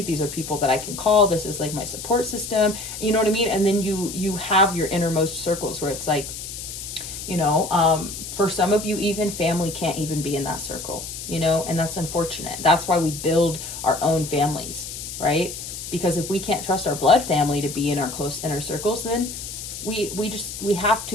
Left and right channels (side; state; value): left; noise; hiss, 9 dB below the sound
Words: These are people that I can call. This is like my support system. You know what I mean? And then you have your innermost circles where it's like, for some of you, even family can't even be in that circle, and that's unfortunate. That's why we build our own families, right? Because if we can't trust our blood family to be in our close inner circles, then we have